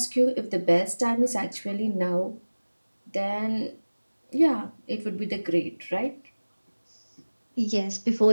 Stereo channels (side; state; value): both; inverted; correlation -1.00